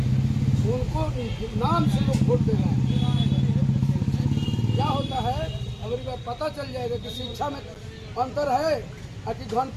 उनको नाम से लोग वोट दे रहे हैं। क्या होता है, अगर ये पता चल जाएगा कि शिक्षा में अंतर है और कि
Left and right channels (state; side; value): identical; both; correlation 1.00